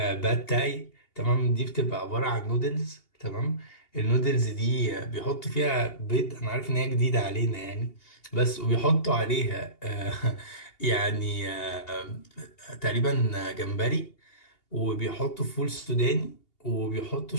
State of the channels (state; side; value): late; right; 2.8 ms